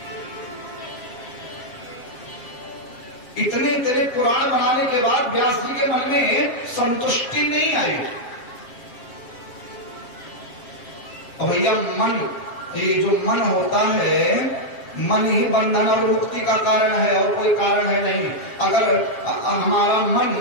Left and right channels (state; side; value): late; right; 7.5 ms